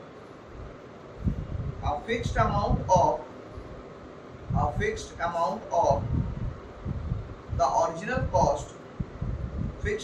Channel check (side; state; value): both; identical; correlation 1.00